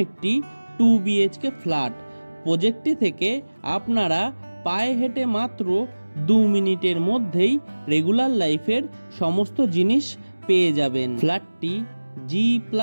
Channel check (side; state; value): both; inverted; correlation -1.00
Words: একটি 2 BHK ফ্ল্যাট। প্রজেক্টটি থেকে আপনারা পায়ে হেঁটে মাত্র 2 মিনিটের মধ্যেই রেগুলার লাইফের সমস্ত জিনিস পেয়ে যাবেন। ফ্ল্যাটটি